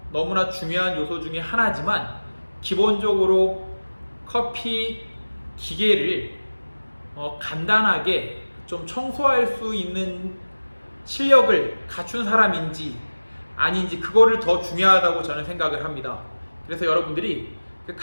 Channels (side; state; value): both; inverted; correlation -1.00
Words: 너무나 중요한 요소 중에 하나지만 기본적으로 커피 기계를 간단하게 좀 청소할 수 있는 실력을 갖춘 사람인지 아닌지 그거를 더 중요하다고 저는 생각을 합니다. 그래서 여러분들이